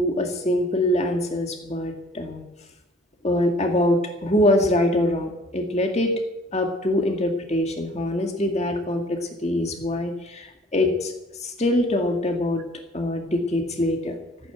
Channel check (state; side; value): normal; both; correlation 0.53